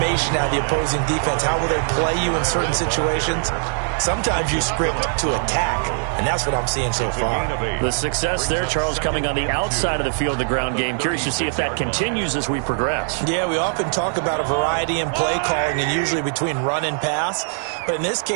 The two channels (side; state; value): left; silent; 65 dB below the other